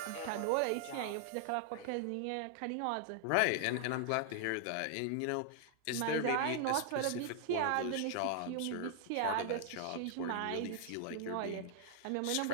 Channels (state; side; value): different; both; correlation 0.00